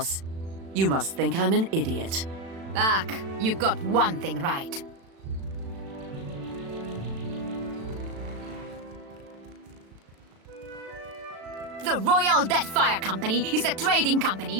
You must think I'm an idiot. Back, you got one thing right. The Royal Deadfire Company is a trading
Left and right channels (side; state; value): left; late; 36 ms